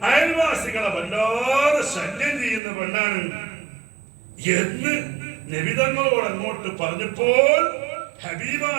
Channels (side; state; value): left; drops out; at 2.6 s